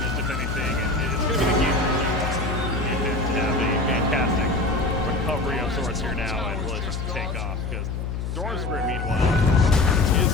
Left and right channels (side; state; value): left; noise; hum, 4 dB below the sound